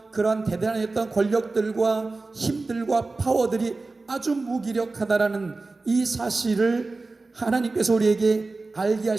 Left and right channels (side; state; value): left; quieter; 3.5 dB